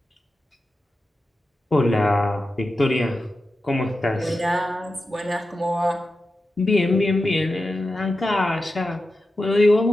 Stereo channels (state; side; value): normal; both; correlation 0.92